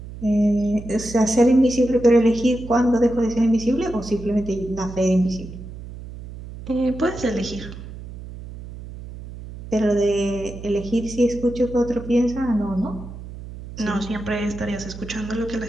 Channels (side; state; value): right; noise; hum, 13 dB below the sound